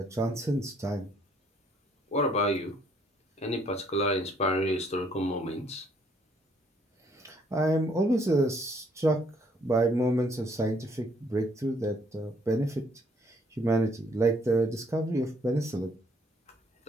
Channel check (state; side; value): normal; both; correlation 0.66